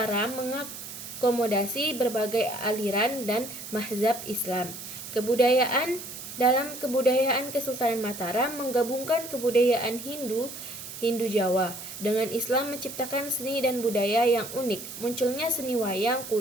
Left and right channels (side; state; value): right; noise; hiss, 11 dB below the sound